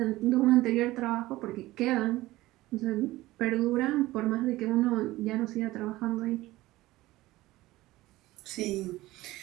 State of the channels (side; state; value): left; quieter; 17.8 dB